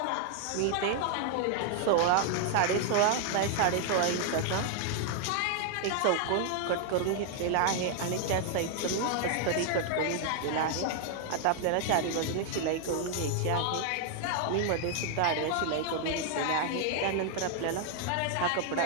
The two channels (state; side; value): different; both; correlation 0.00